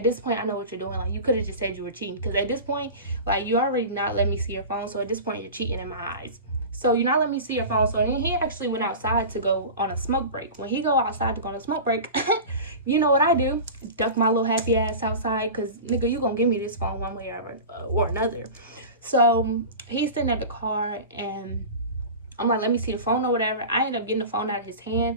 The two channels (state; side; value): inverted; both; correlation -0.32